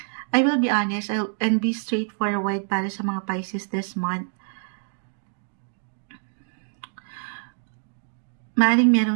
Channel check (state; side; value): silent; left; digital silence